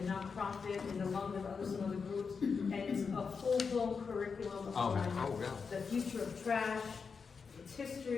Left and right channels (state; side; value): quieter; right; 5.5 dB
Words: nonprofit, and along with some other groups, and it's a full-blown curriculum Oh, on yeah. the future of trash, its